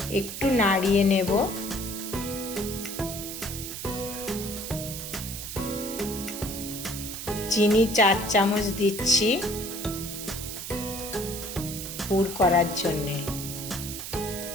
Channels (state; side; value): noise; right; hiss, 7 dB below the sound